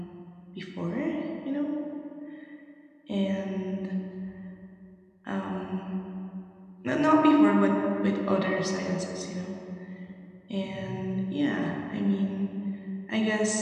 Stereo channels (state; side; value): identical; both; correlation 1.00